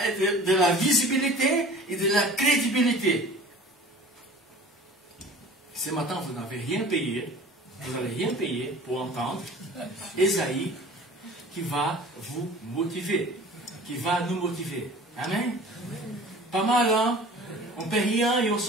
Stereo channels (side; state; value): both; normal; correlation 0.43